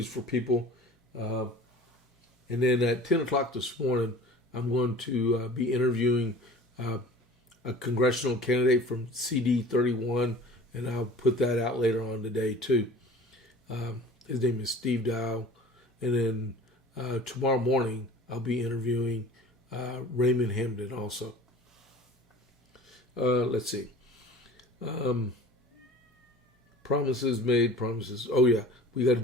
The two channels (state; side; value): normal; both; correlation 0.42